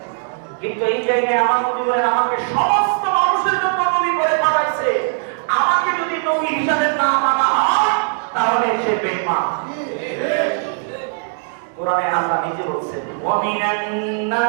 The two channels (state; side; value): silent; left; digital silence